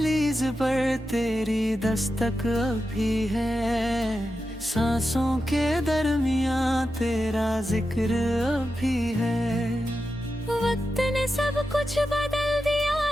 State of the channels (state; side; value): normal; both; correlation 0.90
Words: पर तेरी दस्तक अभी है, सांसों के दरमियां तेरा जिक्र अभी है। वक्त ने सब कुछ बदल दिया